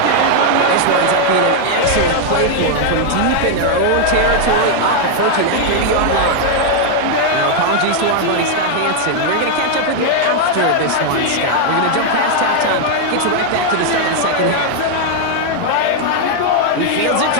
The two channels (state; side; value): different; both; correlation 0.00